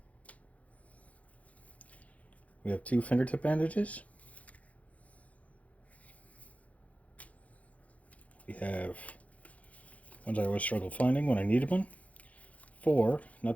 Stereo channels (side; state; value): right; late; 0.067 ms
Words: We have 2 fingertip bandages. We have ones I always struggle finding when I needed one. 4